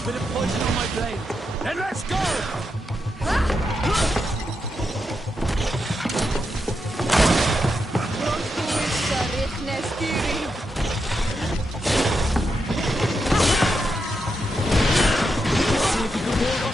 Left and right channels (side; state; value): both; normal; correlation 0.85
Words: Bit of poison on my blade. Then let's go! See if you can ward